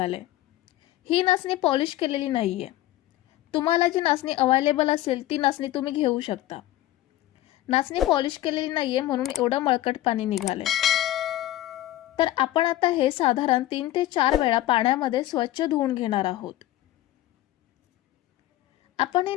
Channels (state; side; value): quieter; right; 15.1 dB